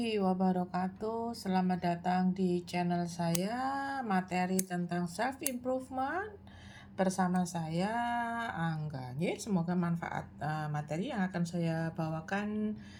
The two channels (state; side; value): identical; both; correlation 1.00